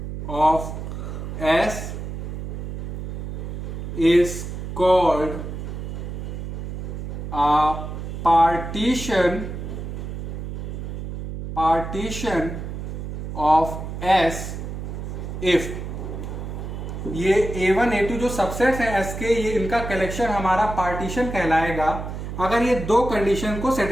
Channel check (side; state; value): right; noise; hum, 6 dB below the sound